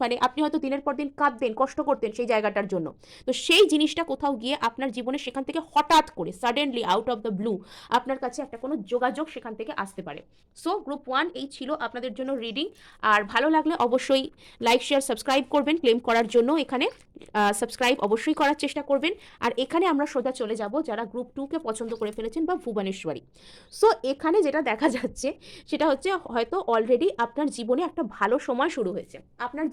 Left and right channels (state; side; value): identical; both; correlation 1.00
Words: মানে আপনি হয়তো দিনের পর দিন কাঁদতেন, কষ্ট করতেন সেই জায়গাটার জন্য, তো সেই জিনিসটা কোথাও গিয়ে আপনার জীবনে সেখান থেকে হঠাৎ করে suddenly out of the blue আপনার কাছে একটা কোনো যোগাযোগ সেখান থেকে আসতে পারে। সো গ্রুপ 1 এই ছিল আপনাদের জন্য রিডিং। আর ভালো লাগলে অবশ্যই লাইক শেয়ার সাবস্ক্রাইব করবেন, ক্লেম করার জন্য এখানে সাবস্ক্রাইব অবশ্যই করার চেষ্টা করবেন। আর এখানে আমরা সোজা চলে যাব যারা গ্রুপ 2কে পছন্দ করে ফেলেছেন বা ভুবনেশ্বরী। সো এখানে যেটা দেখা যাচ্ছে সেটা হচ্ছে হয়তো অলরেডি আপনার জীবনে একটা ভালো সময় শুরু হয়েছে, আপনার